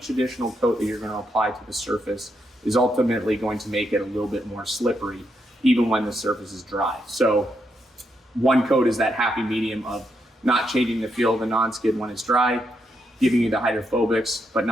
additional coat that you're going to apply to the surface is ultimately going to make it a little bit more slippery, even when the surface is dry. So 1 coat is that happy medium of not changing the feel of the non-skid when it's dry, giving you the hydrophobics, but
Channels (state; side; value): normal; both; correlation 0.80